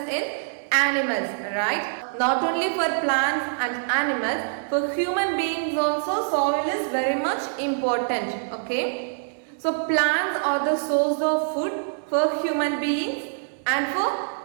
in animals, right? Not only for plants and animals, for human beings also soil is very much important. Okay. So plants are the source of food for human beings and for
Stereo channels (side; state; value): left; silent; digital silence